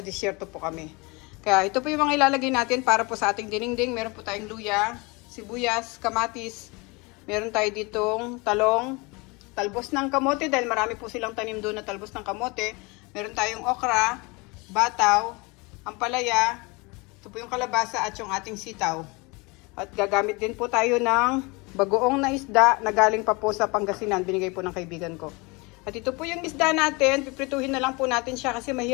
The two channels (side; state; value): right; quieter; 27.0 dB